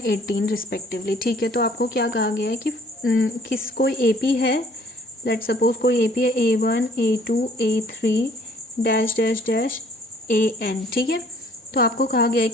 18 respectively. ठीक है, तो आपको क्या कहा गया है कि कोई ए पी है, लेट सपोज कोई ए पी है A1 A2 A3 dash dash dash AN, ठीक है। तो आपको कहा गया है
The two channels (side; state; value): both; normal; correlation 0.58